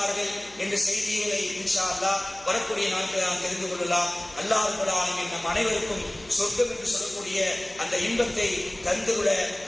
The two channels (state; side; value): noise; left; hum, 26 dB below the sound